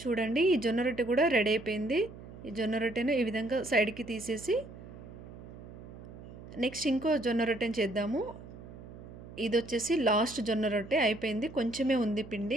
ఈ జొన్న రొట్టె కూడా రెడీ అయిపోయింది. ఈ జొన్న రొట్టెను ఈ విధంగా సైడ్కి తీసేసి నెక్స్ట్ ఇంకో జొన్న రొట్టెని చేద్దాము. ఇది వచ్చేసి లాస్ట్ జొన్న రొట్టె అయిపోయింది. కొంచెమే ఉంది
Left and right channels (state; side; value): noise; right; hum, 15 dB below the sound